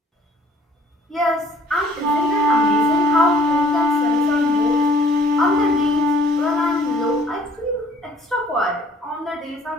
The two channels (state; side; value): normal; both; correlation 0.57